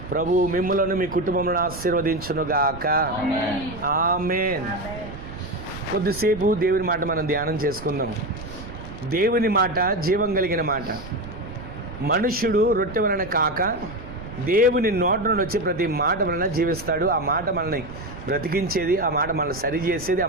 ప్రభు మిమ్ములను మీ కుటుంబంలో ఆశీర్వదించునుగాక. ఆమేన్. కొద్దిసేపు దేవుని మాట మనం ధ్యానం చేసుకుందాం. దేవుని మాట జీవం కలిగిన మాట. మనుష్యుడు రొట్టె వలన కాక దేవుని నోట నుండి వచ్చే ప్రతి మాట వలన జీవిస్తాడు. ఆ మాట మనల్ని బ్రతికించేది, ఆ మాట మనల్ని సరిచేసేది, ఆ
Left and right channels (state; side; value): noise; right; rumble, 13 dB below the sound